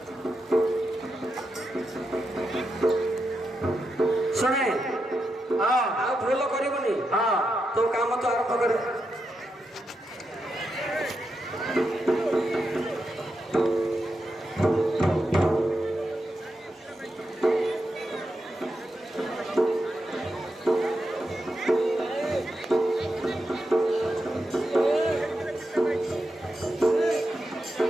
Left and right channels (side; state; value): both; normal; correlation 0.86